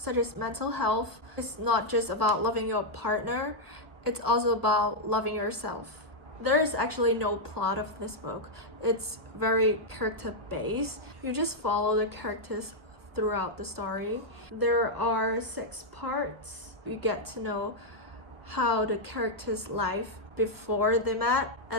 as mental health. It's not just about loving your partner, it's also about loving yourself. There is actually no plot of this book. It's very character based. You just follow the characters throughout the story. There are 6 parts. You get to know how the characters' life before they met,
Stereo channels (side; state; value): left; late; 1.1 ms